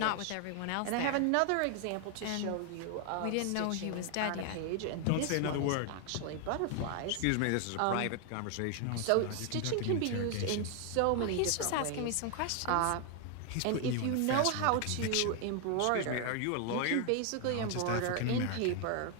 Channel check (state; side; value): different; both; correlation 0.00